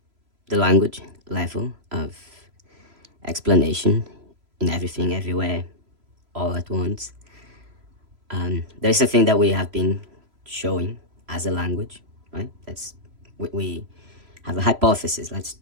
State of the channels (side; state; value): left; late; 3.0 ms